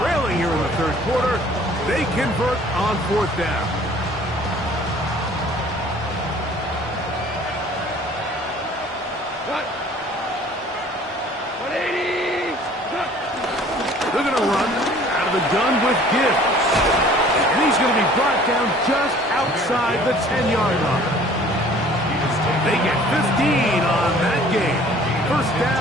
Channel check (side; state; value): both; normal; correlation 0.52